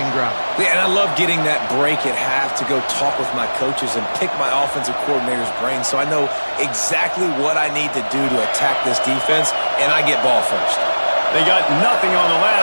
drive. Yeah, and I love getting that break at half to go talk with my coaches and pick my offensive coordinator's brain so I know exactly what I need to do to attack this defense, and I get ball first. They got nothing on the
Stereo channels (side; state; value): both; inverted; correlation -1.00